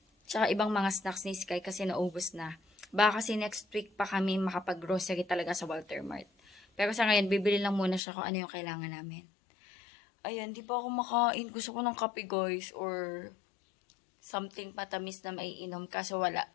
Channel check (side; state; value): right; drops out; at 8.0 s